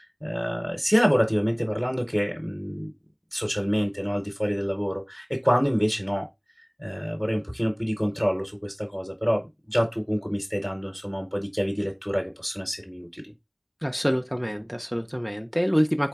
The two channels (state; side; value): identical; both; correlation 1.00